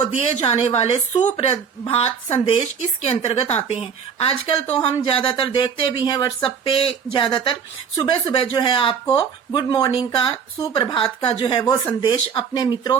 दिए जाने वाले सुप्रभात संदेश इसके अंतर्गत आते हैं। आजकल तो हम ज्यादातर देखते भी हैं व्हाट्सएप पे, ज्यादातर सुबह सुबह जो है आपको गुड मॉर्निंग का, सुप्रभात का जो है वो संदेश अपने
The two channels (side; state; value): left; quieter; 6.9 dB